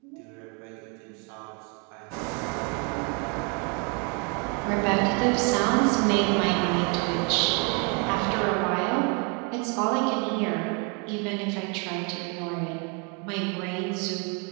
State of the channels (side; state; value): left; quieter; 34.8 dB